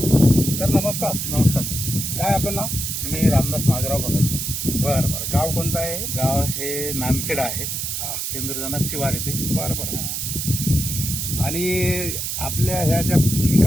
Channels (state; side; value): noise; right; hiss, 3 dB below the sound